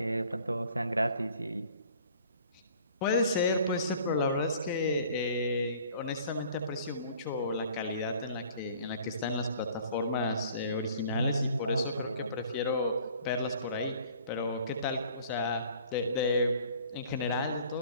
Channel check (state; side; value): inverted; both; correlation -0.51